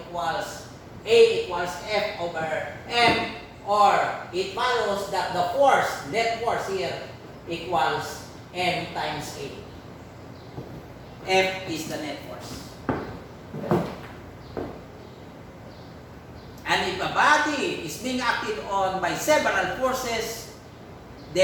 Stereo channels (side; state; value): both; identical; correlation 1.00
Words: A equals F over M, or it follows that the force, net force here, equals M times A. F is the net force. And if a body is being acted on by several forces,